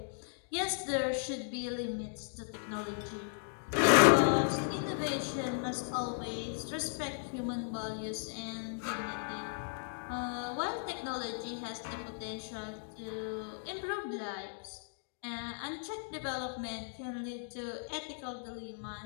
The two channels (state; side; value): silent; right; digital silence